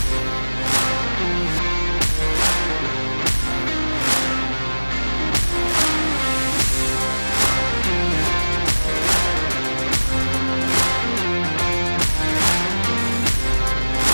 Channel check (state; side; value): inverted; both; correlation -1.00